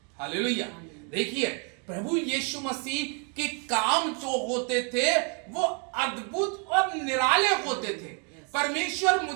हालेलुया। देखिए, प्रभु यीशु मसीह के काम जो होते थे वो अद्भुत और निराले होते थे। परमेश्वर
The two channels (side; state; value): left; quieter; 38.5 dB